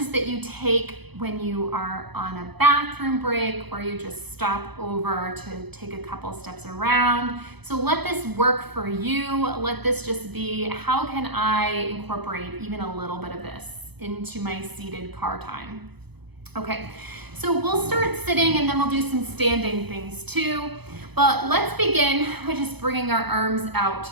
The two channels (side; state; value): left; late; 0.98 ms